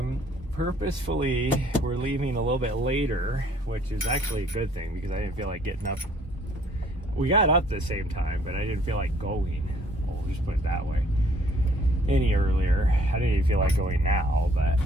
we're leaving a little bit later, which is actually a good thing because I didn't feel like getting up. We got up at the same time, but I didn't feel like going. We'll just put it that way. Any earlier. I didn't even feel like going now, but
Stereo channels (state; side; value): normal; both; correlation 0.60